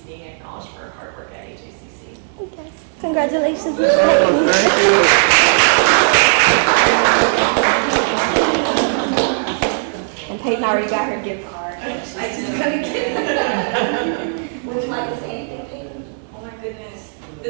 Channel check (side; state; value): left; quieter; 39.6 dB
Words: being acknowledged for her hard work at HACC. Congratulations, Miss Peyton. And Peyton already got her gift card. I just got a kid. Would you like to say anything, Peyton? Oh my goodness.